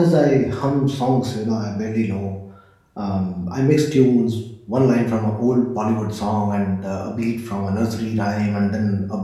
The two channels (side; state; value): both; identical; correlation 1.00